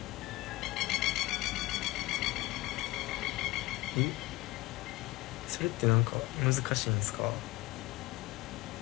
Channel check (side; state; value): right; quieter; 19.7 dB